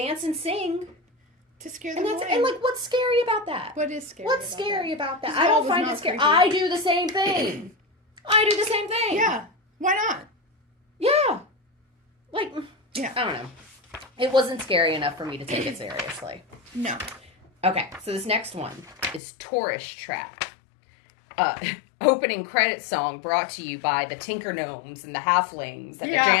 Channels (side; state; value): right; drops out; at 19.2 s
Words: and sing to scare them away. And like, what's scary about that? What is scary? What's scary about that? I don't find it scary. I do the same thing. Yeah. Why not? Yeah. Like, yeah. I don't know. It wasn't scary enough for me to take it seriously. No. Okay, so this next one is Tourist Trap. Opening credit song brought to you by the Tinker Gnomes and the Halflings at the